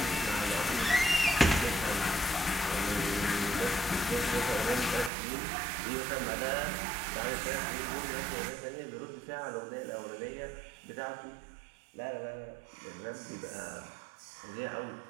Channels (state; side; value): drops out; left; at 5.1 s